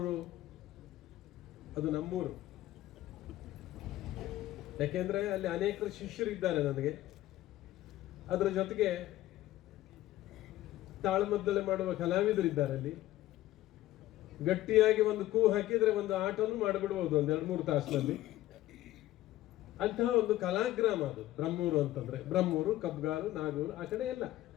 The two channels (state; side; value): quieter; right; 15.2 dB